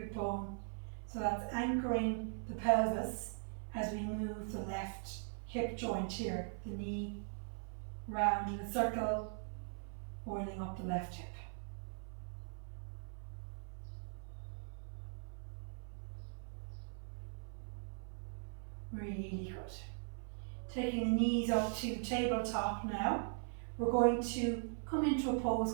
bone. So that's anchoring the pelvis as we move the left hip joint here, the knee round in a circle, oiling up the left hip. Really good. Taking the knees up to tabletop now. We're going to come into a pose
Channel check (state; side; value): silent; left; 51 dB below the other